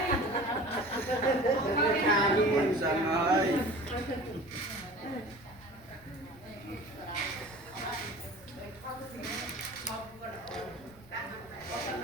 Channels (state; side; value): noise; left; rumble, 26 dB below the sound